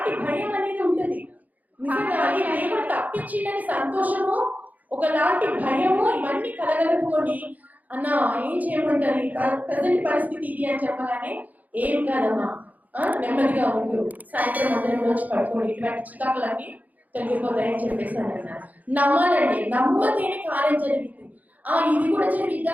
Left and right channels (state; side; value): late; left; 0.079 ms